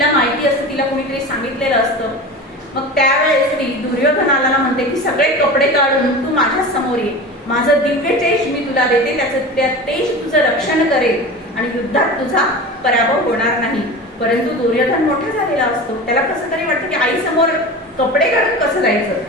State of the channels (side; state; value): both; normal; correlation 0.31